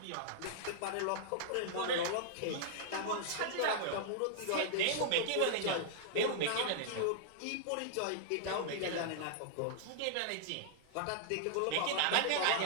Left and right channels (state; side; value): different; both; correlation -0.01